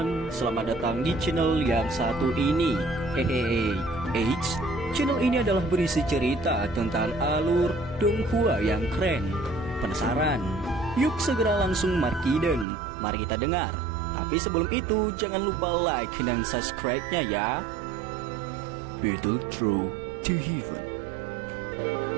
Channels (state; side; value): drops out; left; at 12.7 s